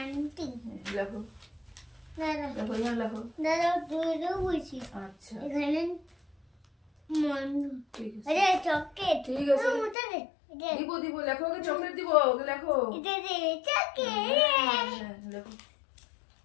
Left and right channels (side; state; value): right; drops out; at 10.0 s